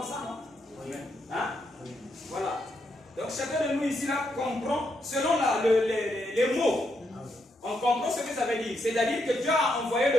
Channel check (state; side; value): normal; both; correlation 0.79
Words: ça, non? Oui. Hein? Oui. Voilà. Donc chacun de nous ici là comprend selon les mots. On comprend ce que ça veut dire. C'est-à-dire que Dieu a envoyé